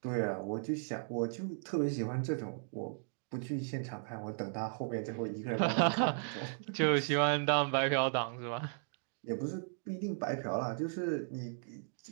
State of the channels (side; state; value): left; silent; digital silence